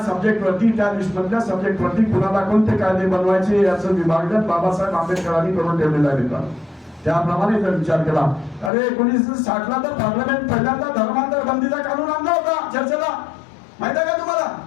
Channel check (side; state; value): right; drops out; at 8.7 s